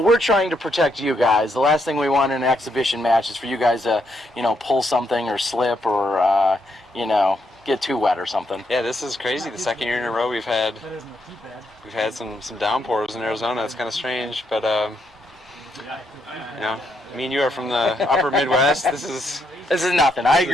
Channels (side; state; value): both; normal; correlation 0.77